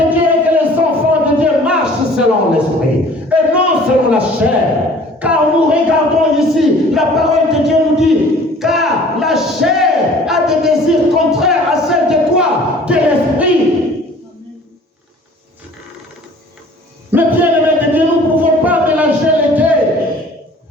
Dieu est que les enfants de Dieu marchent selon l'Esprit et non selon la chair. Car nous regardons ici, la parole de Dieu nous dit, car la chair a des désirs contraires à celle de quoi? De l'Esprit. Mais bien aimé de Dieu, nous ne pouvons pas mélanger les deux.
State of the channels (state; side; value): normal; both; correlation 0.50